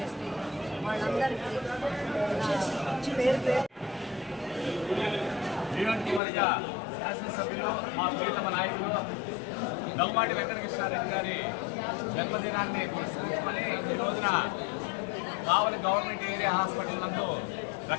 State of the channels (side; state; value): right; drops out; at 6.2 s